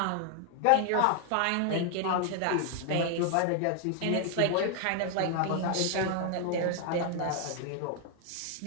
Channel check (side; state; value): both; different; correlation 0.00